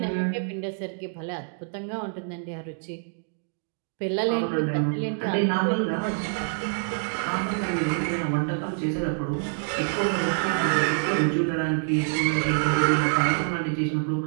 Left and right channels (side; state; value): left; silent; digital silence